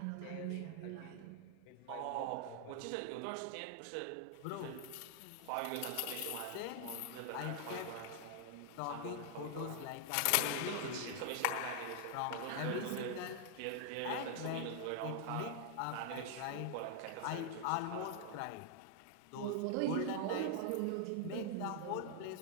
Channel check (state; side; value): different; both; correlation 0.00